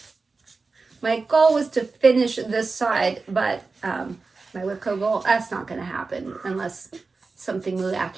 My goal was to finish this side, but my Wipco goal, that's not going to happen unless something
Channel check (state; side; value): quieter; left; 4.1 dB